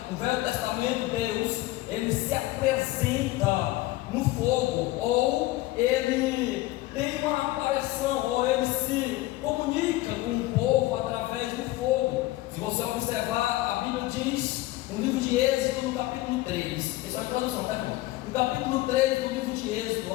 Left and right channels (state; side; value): quieter; right; 17.9 dB